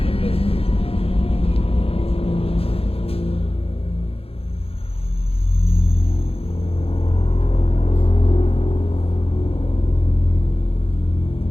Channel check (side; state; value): right; late; 0.28 ms